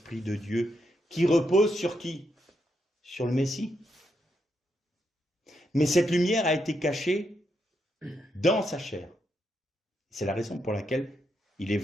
de Dieu, qui reposent sur qui? Sur le Messie. Mais cette lumière a été cachée dans sa chair. C'est la raison pour laquelle il est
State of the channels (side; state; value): both; normal; correlation 0.81